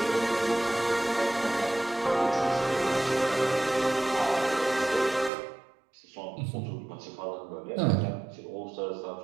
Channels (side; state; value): left; drops out; at 5.3 s